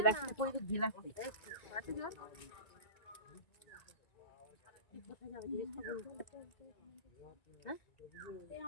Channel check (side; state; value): right; late; 1.9 ms